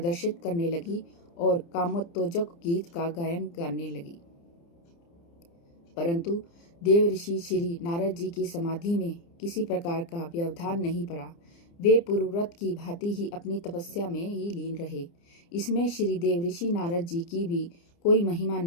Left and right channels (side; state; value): right; late; 29 ms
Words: करने लगी और कामोत्तेजक गीत का गायन करने लगी। परंतु देव ऋषि श्री नारद जी की समाधि में किसी प्रकार का व्यवधान नहीं पड़ा। वे पूर्वव्रत की भांति ही अपनी तपस्या में ही लीन रहे। इसमें श्री देव ऋषि नारद जी की भी कोई महिमा